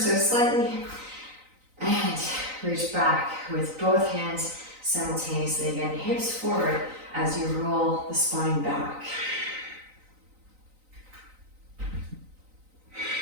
slightly. And reach back with both hands simultaneously. Again, hips forward as you roll the spine back.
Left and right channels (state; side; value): late; left; 3.9 ms